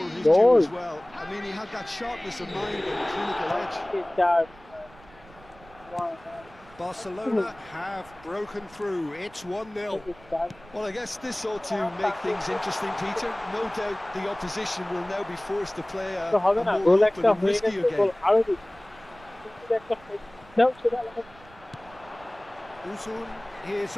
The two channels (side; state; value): right; noise; rumble, 23 dB below the sound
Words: his due as well. I mean, he had that sharpness of mind and clinical edge. Barcelona have broken through. It's 1-0. Well, I guess this ought to make things interesting, Peter. No doubt the opposition will now be forced to play a more open and riskier game. Uzun is